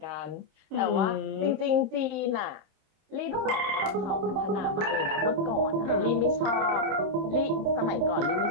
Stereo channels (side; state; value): left; late; 27 ms